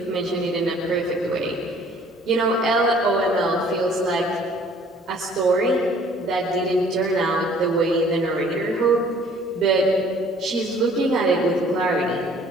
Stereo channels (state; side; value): normal; both; correlation 0.55